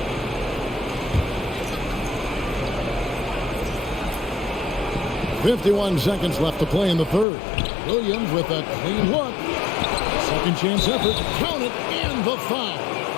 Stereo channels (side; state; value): right; drops out; at 7.2 s